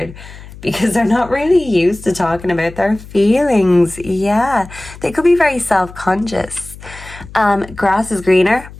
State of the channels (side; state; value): left; noise; hum, 17 dB below the sound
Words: because they're not really used to talking about their feelings. Yeah, they could be very self-conscious. Grass is greener,